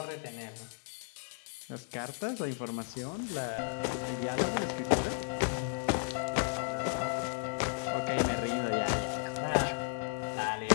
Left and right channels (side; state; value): right; silent; digital silence